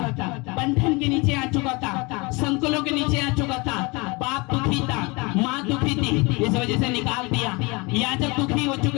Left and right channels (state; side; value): quieter; right; 26.7 dB